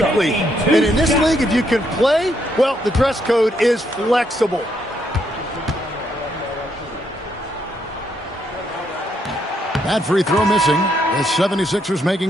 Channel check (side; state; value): both; normal; correlation 0.75